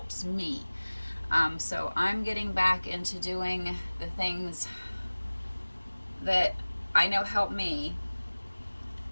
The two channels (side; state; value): both; inverted; correlation -1.00